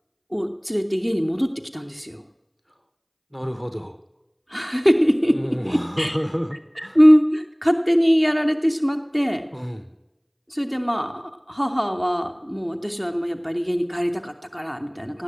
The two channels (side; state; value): both; identical; correlation 1.00